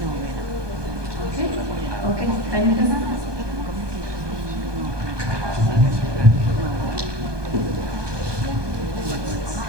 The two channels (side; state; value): left; late; 1.2 ms